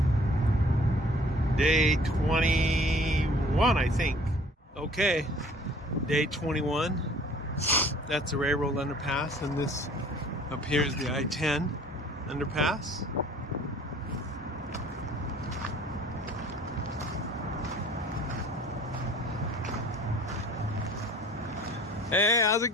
Day 21, I think. Okay, day 21. That's the railroad underpass, and this up here is the I-10 underpass. Hey, how's it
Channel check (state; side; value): normal; both; correlation 0.52